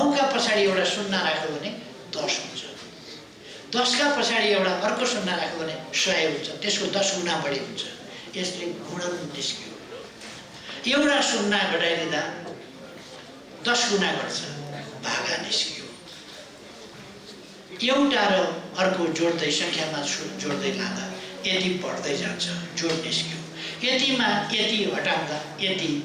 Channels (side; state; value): both; identical; correlation 1.00